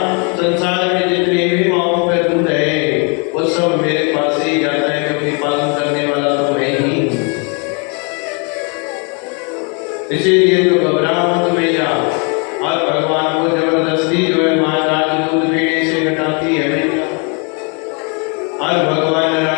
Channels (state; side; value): quieter; right; 35.5 dB